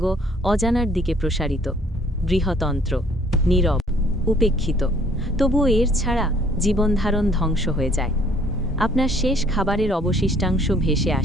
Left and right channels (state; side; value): normal; both; correlation 0.59